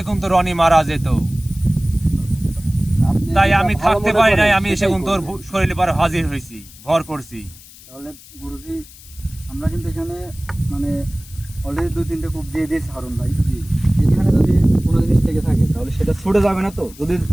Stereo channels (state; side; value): noise; left; hiss, 21 dB below the sound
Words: কিন্তু রনি মারা যেত। তাই আমি থাকতে পারি নাই, আমি এসে কিন্তু তোর শরীরে পর হাজির হয়েছি, ভর করছি। তাহলে গুরুজি আমরা কিন্তু এখানে মানে অলরেডি 2-3টে কূপ দিয়ে দিয়েছি হারুন ভাই। এখানে যদি কোনো জিনিস থেকে থাকে তাহলে সেটা ছুটে যাবে না তো? যদি